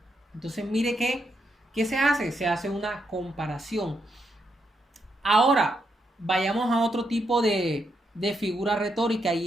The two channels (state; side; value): normal; both; correlation 0.80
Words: Entonces mire ¿qué se hace? Se hace una comparación. Ahora, vayamos a otro tipo de figura retórica